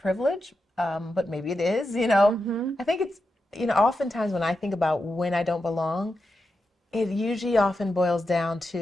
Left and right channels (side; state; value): both; normal; correlation 0.88